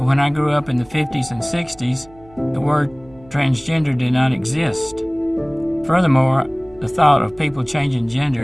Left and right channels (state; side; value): noise; right; hum, 26 dB below the sound